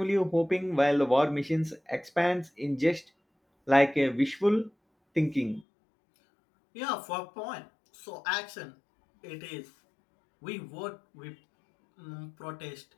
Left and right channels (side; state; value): right; drops out; at 5.7 s